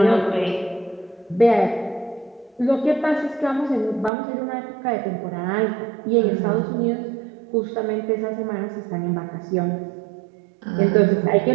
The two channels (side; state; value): left; drops out; at 4.1 s